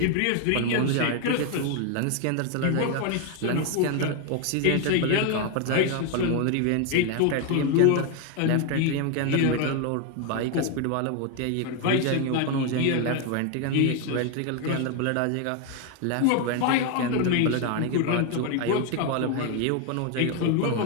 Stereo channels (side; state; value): both; different; correlation 0.01